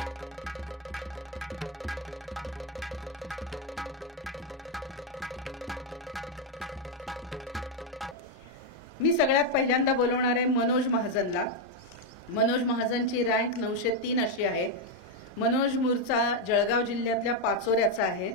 मी सगळ्यात पहिल्यांदा बोलवणार आहे Manoj महाजनला। Manoj महाजनची rank 903 अशी आहे। मनोज मूळचा जळगाव जिल्ह्यातल्या पाचोऱ्याचा आहे।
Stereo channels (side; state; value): both; normal; correlation 0.03